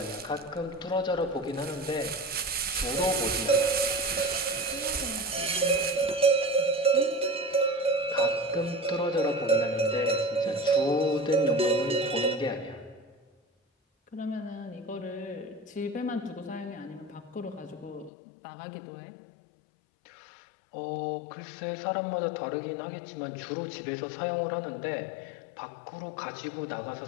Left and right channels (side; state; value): right; drops out; at 18.1 s